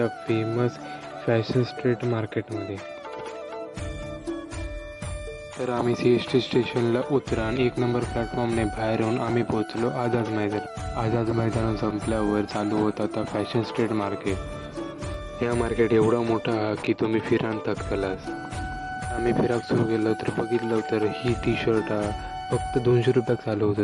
फेमस फॅशन स्ट्रीट मार्केटमध्ये. तर आम्ही CST स्टेशनला उतरा आणि 1 नंबर प्लॅटफॉर्मने बाहेर येऊन आम्ही पोहोचलो आझाद मैदान. आझाद मैदान संपल्यावर चालू होता आता फॅशन स्ट्रीट मार्केट. या मार्केट एवढा मोठा हा की तुम्ही फिरान थकतलास. आम्ही फिराक सुरू केलं तर बघितलं तर ही टी शर्ट फक्त 200 रुपयात चालू होत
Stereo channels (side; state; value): both; identical; correlation 1.00